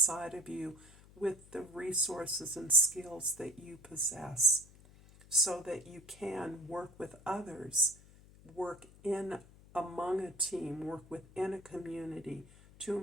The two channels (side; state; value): left; noise; hum, 23 dB below the sound